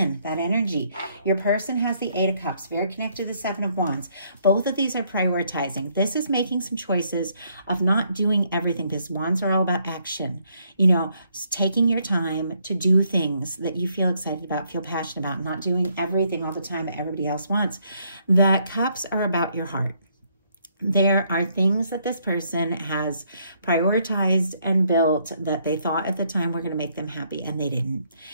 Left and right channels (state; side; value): inverted; both; correlation -0.70